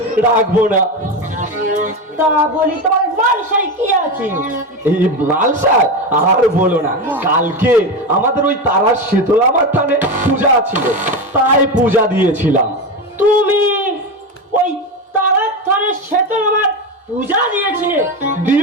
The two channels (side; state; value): both; normal; correlation 0.17